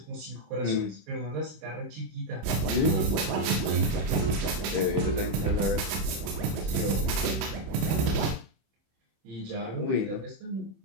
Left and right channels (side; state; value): left; late; 27 ms